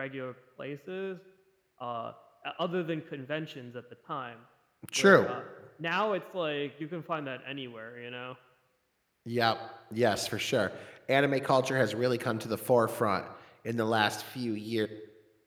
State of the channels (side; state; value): both; identical; correlation 1.00